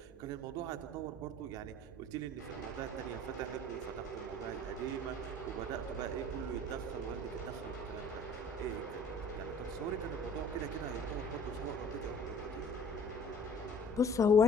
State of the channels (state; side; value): normal; both; correlation 0.49